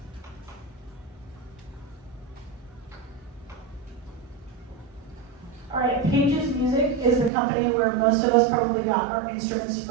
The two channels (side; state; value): left; drops out; at 7.3 s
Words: All right, Pages Music is the company where most of us probably got our instruments